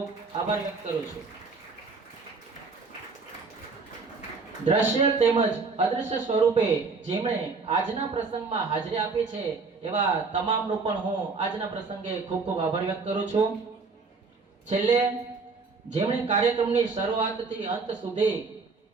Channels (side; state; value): left; quieter; 4.4 dB